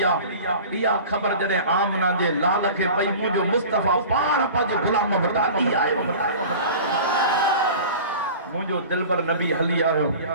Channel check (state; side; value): inverted; both; correlation -0.39